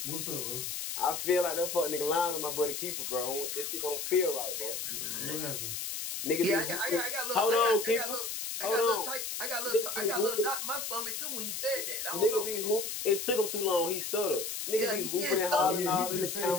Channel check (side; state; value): left; noise; hiss, 4 dB below the sound